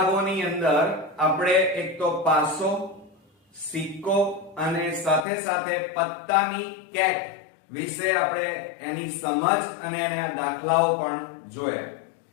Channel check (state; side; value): drops out; right; at 5.2 s